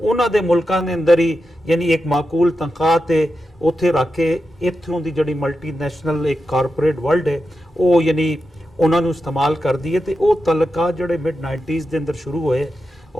ਦੇ ਮੁਲਕਾਂ ਦੇ ਅੰਦਰ ਹੀ ਯਾਨੀ ਇੱਕ ਮਾਕੂਲ ਤਨਖਾਹ ਤੇ ਉੱਥੇ ਰੱਖ ਕੇ ਇੱਥੋਂ ਦੀ ਜਿਹੜੀ ਮਲਟੀਨੈਸ਼ਨਲ ਇੱਕ ਕਾਰਪੋਰੇਟ ਵਰਲਡ ਹੈ ਉਹ ਯਾਨੀ ਉਹਨਾਂ ਨੂੰ ਇਸਤੇਮਾਲ ਕਰਦੀ ਹੈ। ਤੇ ਉਹ ਤਲਕਾ ਜਿਹੜੇ ਮਿਡ 90s ਦੇ ਅੰਦਰ ਸ਼ੁਰੂ ਹੋਏ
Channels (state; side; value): normal; both; correlation 0.89